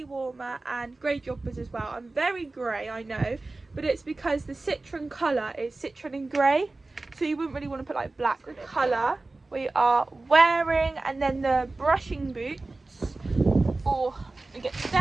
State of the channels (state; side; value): quieter; left; 3.2 dB